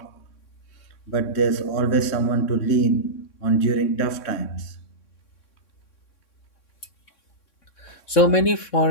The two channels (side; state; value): right; late; 3.6 ms